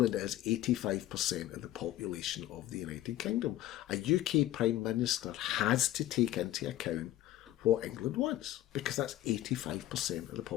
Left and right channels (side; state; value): right; quieter; 14.1 dB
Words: is 85% of the population of the United Kingdom. A UK Prime Minister has to take into account what England wants, because that's 85% of the